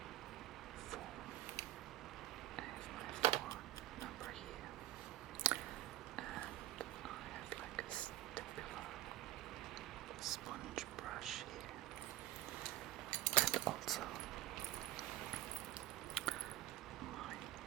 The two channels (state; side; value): quieter; left; 14.5 dB